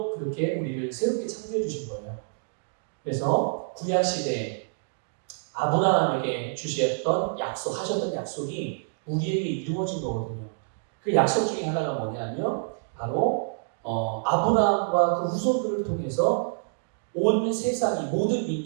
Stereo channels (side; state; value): left; silent; digital silence